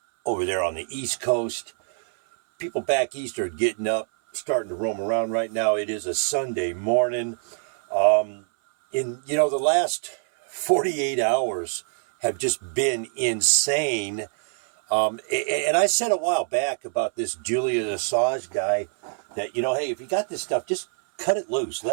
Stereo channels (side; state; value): left; silent; 62 dB below the other